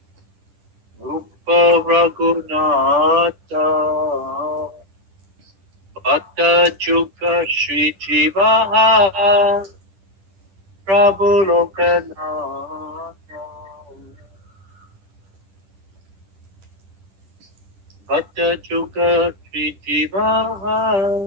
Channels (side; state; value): left; late; 10 ms